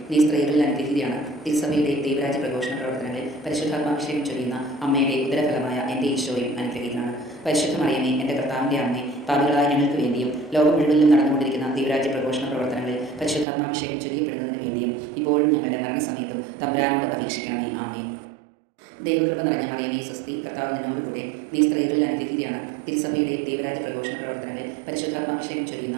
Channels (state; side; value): drops out; left; at 13.5 s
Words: നീ സ്ത്രീകളിൽ അനുഗ്രഹീതയാണ്. തിരുസഭയുടെ ദൈവരാജ്യ പ്രഘോഷണ പ്രവർത്തനങ്ങളിൽ പരിശുദ്ധാത്മാഭിഷേകം ചൊരിയുന്ന അമ്മയുടെ ഉദരഫലമായ എൻ്റെ ഈശോയും അനുഗ്രഹീതനാണ്. പരിശുദ്ധ മറിയമേ, എൻ്റെ കർത്താവിൻ്റെ അമ്മേ, പാപികളായ ഞങ്ങൾക്ക് വേണ്ടിയും ലോകം മുഴുവനിലും നടന്നുകൊണ്ടിരിക്കുന്ന ദൈവരാജ്യ പ്രഘോഷണ പ്രവർത്തനങ്ങളിൽ പരിശുദ്ധാത്മാഭിഷേകം ചൊരിയപ്പെടുന്നതിന് വേണ്ടിയും ഇപ്പോഴും ഞങ്ങളുടെ മരണസമയത്തും തമ്പുരാനോട് അപേക്ഷിക്കണമേ. ആമേൻ. ദൈവകൃപ നിറഞ്ഞ മറിയമേ, സ്വസ്തി. കർത്താവ് നിന്നോടുകൂടെ, നീ സ്ത്രീകളിൽ അനുഗ്രഹീതയാണ്. തിരുസഭയുടെ ദൈവരാജ്യ പ്രഘോഷണ പ്രവർത്തനങ്ങളിൽ പരിശുദ്ധാത്മാഭിഷേകം ചൊരിയുന്ന